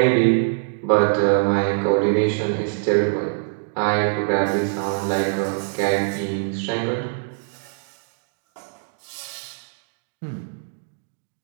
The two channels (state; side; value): silent; left; digital silence